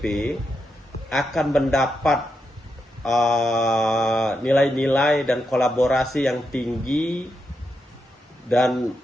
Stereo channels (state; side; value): normal; both; correlation 0.84